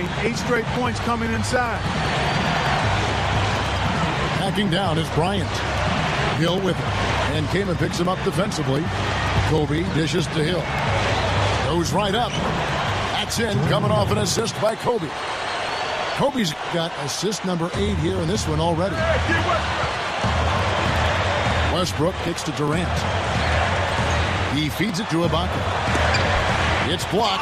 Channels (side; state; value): both; identical; correlation 1.00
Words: 8 straight points coming inside. Backing down is Bryant. Hill with him. And Kamen picks him up defensively. Kobe dishes to Hill. Goes right up. That's in, coming off an assist by Kobe. Kobe's got assist number 8 here in this one already. Westbrook kicks to Durant. He feeds it to Ibaka. It's